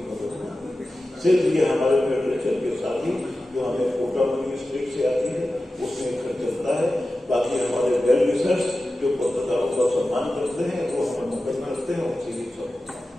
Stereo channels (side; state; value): both; normal; correlation 0.94